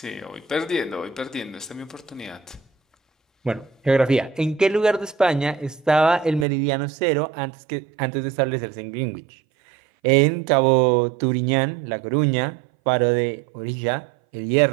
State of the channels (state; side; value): drops out; left; at 6.5 s